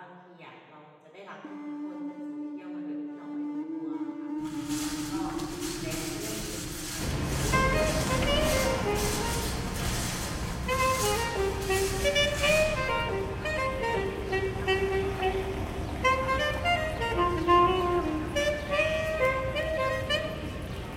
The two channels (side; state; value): both; identical; correlation 1.00